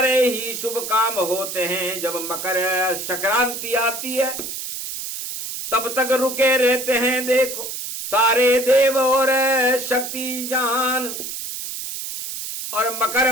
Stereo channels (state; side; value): noise; right; hiss, 6 dB below the sound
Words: ही शुभ काम होते हैं जब मकर संक्रांति आती है, तब तक रुके रहते हैं देखो सारे देव और शक्ति जान, और मकर